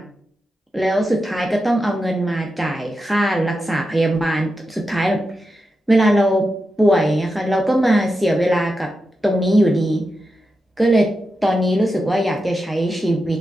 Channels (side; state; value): both; normal; correlation 0.89